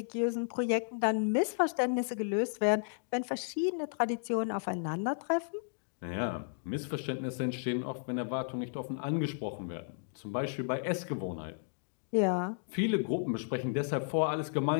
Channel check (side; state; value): right; silent; digital silence